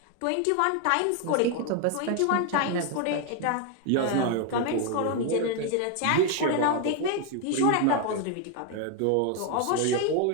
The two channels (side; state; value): both; different; correlation 0.01